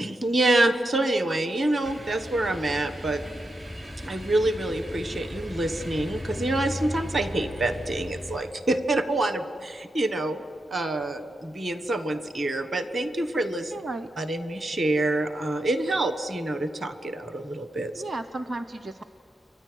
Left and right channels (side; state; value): both; normal; correlation 0.86